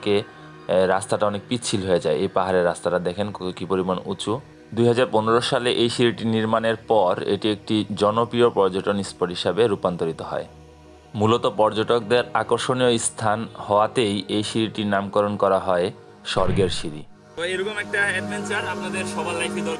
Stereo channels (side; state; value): both; identical; correlation 1.00